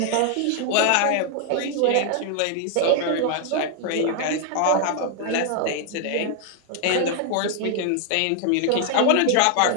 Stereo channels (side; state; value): both; different; correlation 0.00